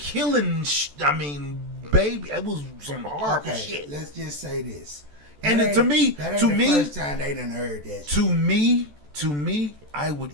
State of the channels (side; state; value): left; late; 14 ms